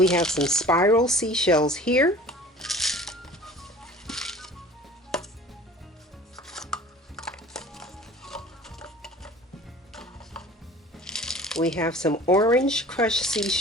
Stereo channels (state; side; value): normal; both; correlation 0.44